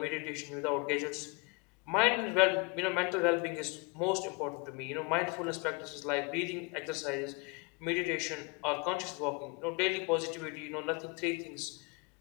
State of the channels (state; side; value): quieter; right; 31.1 dB